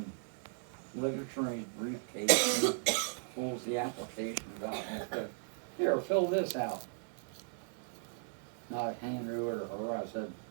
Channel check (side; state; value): left; silent; digital silence